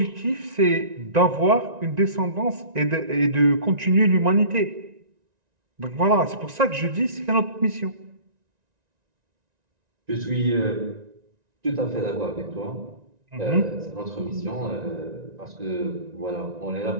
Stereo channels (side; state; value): left; late; 1.9 ms